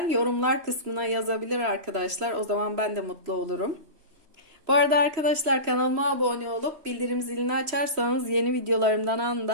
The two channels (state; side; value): late; left; 3.0 ms